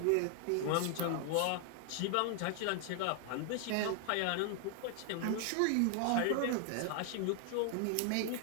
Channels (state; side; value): different; both; correlation 0.00